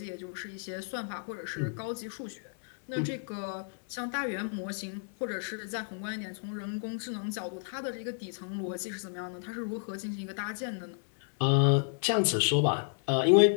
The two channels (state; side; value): silent; right; digital silence